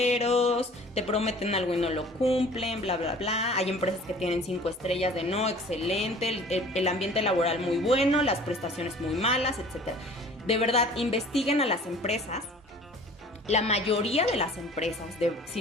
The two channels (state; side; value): normal; both; correlation 0.47